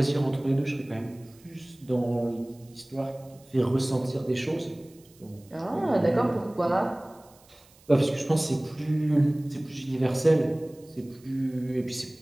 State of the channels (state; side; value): noise; right; hiss, 28 dB below the sound